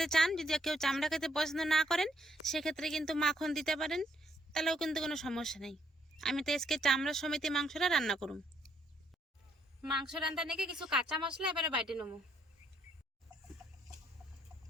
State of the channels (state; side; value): normal; both; correlation 0.71